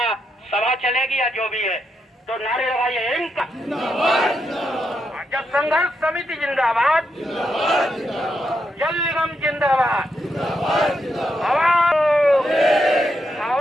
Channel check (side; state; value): both; normal; correlation 0.82